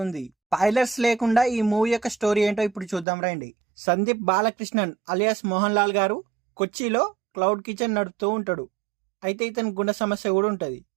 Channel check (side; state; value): left; drops out; at 3.1 s